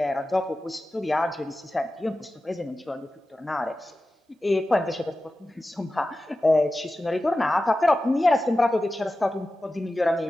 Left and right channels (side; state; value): both; normal; correlation 0.94